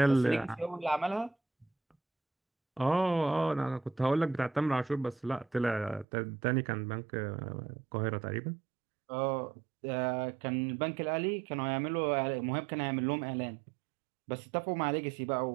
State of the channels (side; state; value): left; drops out; at 6.1 s